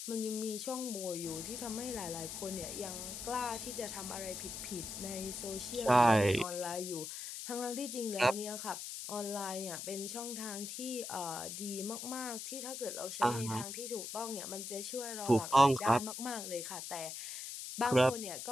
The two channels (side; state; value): left; noise; hiss, 7 dB below the sound